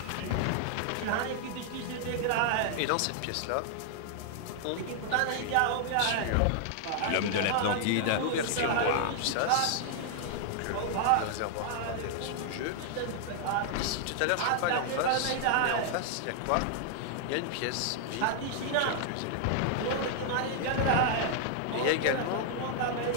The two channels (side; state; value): both; different; correlation 0.00